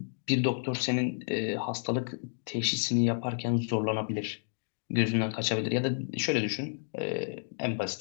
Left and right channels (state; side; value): silent; right; digital silence